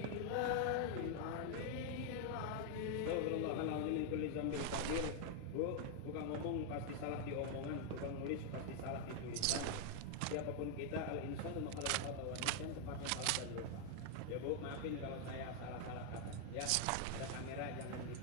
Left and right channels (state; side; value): different; both; correlation 0.00